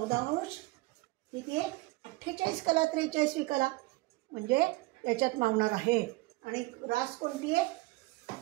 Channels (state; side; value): quieter; left; 22.1 dB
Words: अंश किती आहे? 48 कला 43वी कला म्हणजे याच्यात मावणार आहे. आणि रास कोणती आहे?